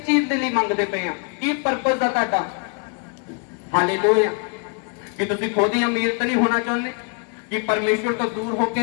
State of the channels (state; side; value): quieter; right; 38.5 dB